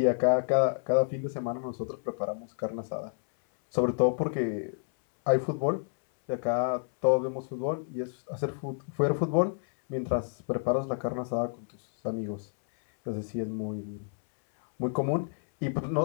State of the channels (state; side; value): silent; right; 58 dB below the other